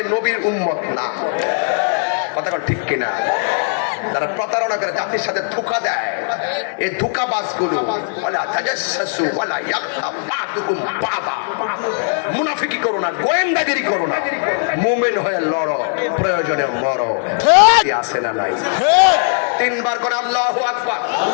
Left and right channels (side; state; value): right; silent; digital silence